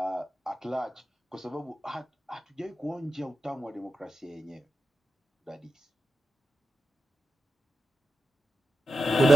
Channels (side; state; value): both; normal; correlation 0.90